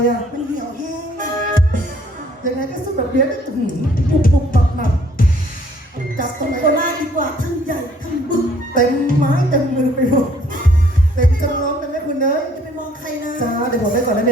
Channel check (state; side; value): normal; both; correlation 0.61